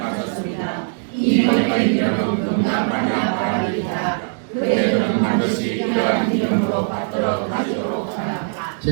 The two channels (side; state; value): left; silent; digital silence